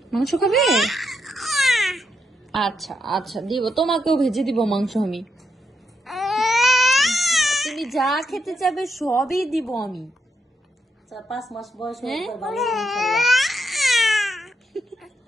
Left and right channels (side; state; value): both; normal; correlation 0.80